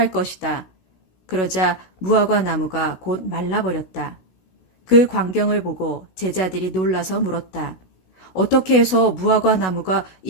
것이다. 그러자 무화과 나무가 곧 말라버렸다. 그 광경을 보고 제자들이 놀라서 물었다. 어떻게 해서 무화과 나무가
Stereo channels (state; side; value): late; right; 16 ms